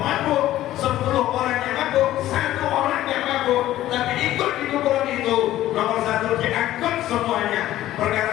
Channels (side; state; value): right; quieter; 14.1 dB